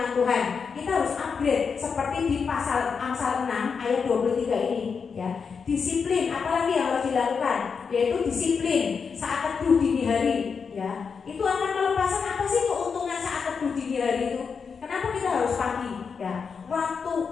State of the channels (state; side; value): quieter; right; 5.8 dB